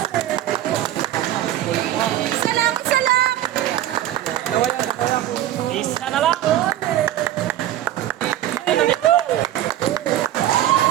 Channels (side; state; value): left; quieter; 12.8 dB